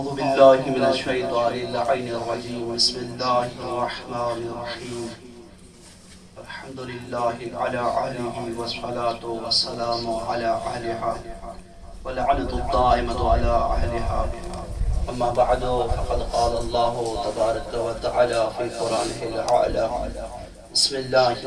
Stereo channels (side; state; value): both; identical; correlation 1.00